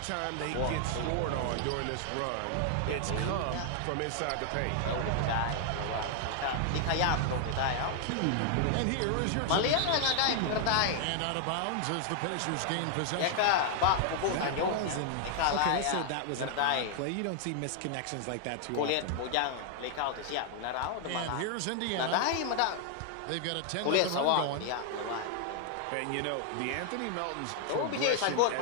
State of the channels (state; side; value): different; both; correlation 0.00